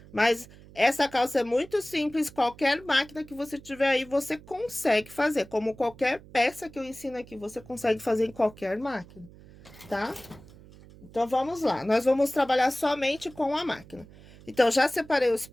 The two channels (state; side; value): noise; right; hum, 21 dB below the sound